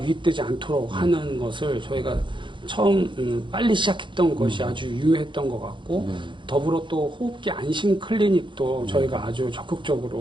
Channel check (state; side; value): late; left; 0.23 ms